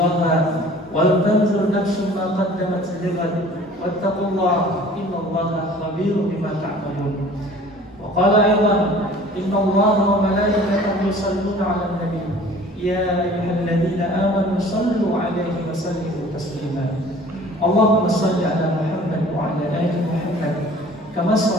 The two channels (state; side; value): normal; both; correlation 0.48